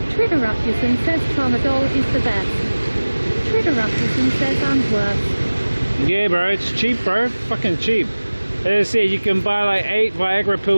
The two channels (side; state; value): both; inverted; correlation -1.00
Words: Trideraptison says Tramadol is the best. Trideraptison says and worse. Yeah, bro, it's cheap, bro. Fucking cheap. As I said, you can buy like 8 Viagra